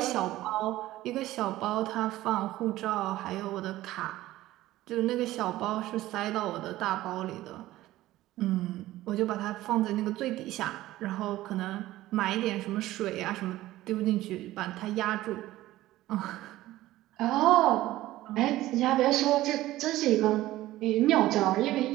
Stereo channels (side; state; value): left; quieter; 15.9 dB